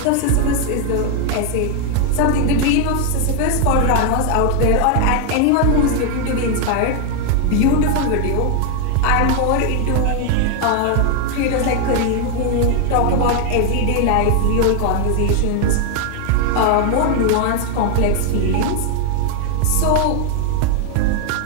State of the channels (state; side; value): different; both; correlation 0.01